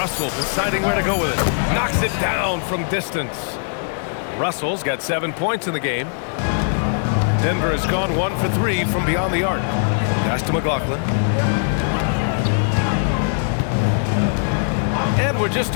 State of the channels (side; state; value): right; silent; digital silence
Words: deciding where to go with it. Knocks it down from distance. Russell's got 7 points in the game. Denver has gone 1 for 3 from beyond the arc. Pass to McLaughlin. And we're just